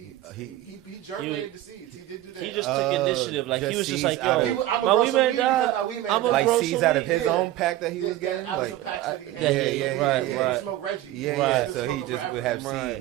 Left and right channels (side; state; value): left; quieter; 14.7 dB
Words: He germinated the seeds. He did do that. He just took initiative. Like he was just like, "Yo, I'm gonna grow some weed because my weed man like seeds out of his own pack that he was getting. Out of some packs that he had. He would smoke Reggie. He was smoking forever.